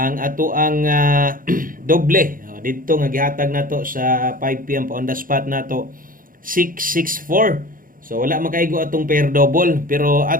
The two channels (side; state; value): left; late; 0.40 ms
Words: ato ang doble dito nga gihatag nato sa 5 p.m. pa on the spot nato 664. So wala makaigo atong pair double pero